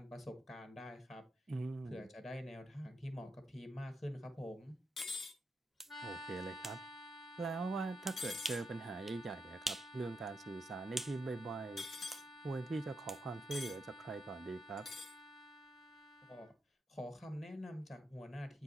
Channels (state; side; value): normal; both; correlation 0.84